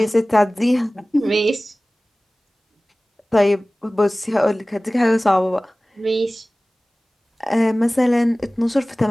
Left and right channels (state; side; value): normal; both; correlation 0.98